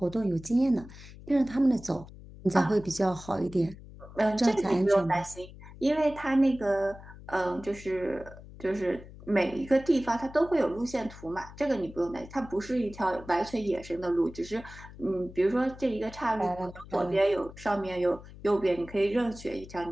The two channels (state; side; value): noise; left; hum, 17 dB below the sound